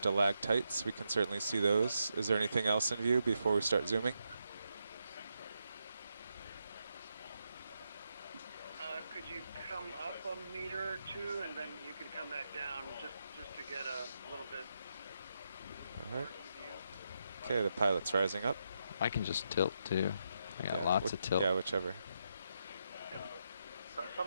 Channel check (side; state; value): both; inverted; correlation -0.82